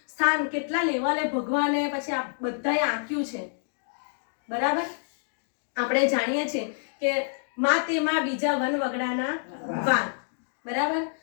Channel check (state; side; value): silent; right; digital silence